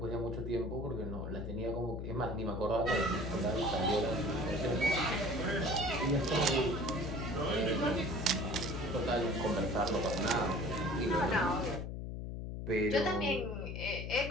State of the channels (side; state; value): left; noise; hum, 5 dB below the sound